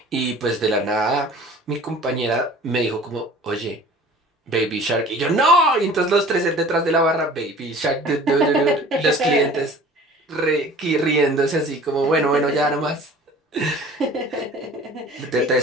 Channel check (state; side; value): normal; both; correlation 0.45